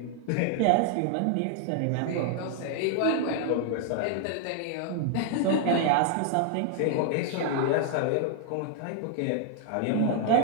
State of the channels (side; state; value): both; different; correlation 0.00